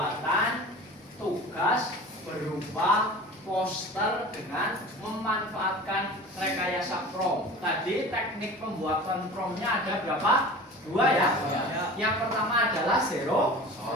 tugas berupa poster dengan memanfaatkan rekayasa prompt. Tadi teknik pembuatan promptnya ada berapa? 2 ya? Yang pertama adalah zero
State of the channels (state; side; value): normal; both; correlation 0.38